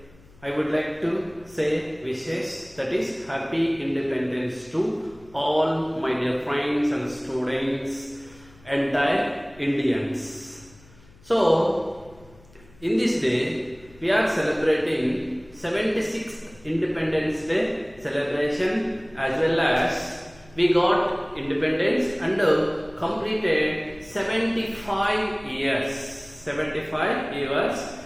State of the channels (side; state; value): left; noise; hum, 25 dB below the sound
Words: I would like to say wishes, that is Happy Independence to all my dear friends and students, entire Indians. So, in this day, we are celebrating 76th Independence Day celebration, as well as we got independence and completed 75 years. 75 years.